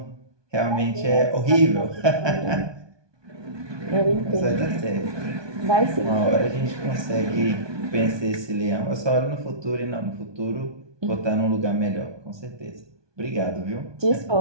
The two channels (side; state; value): left; late; 1.2 ms